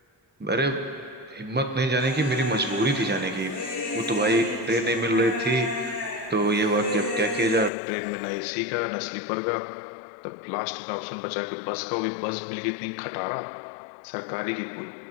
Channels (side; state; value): right; drops out; at 7.7 s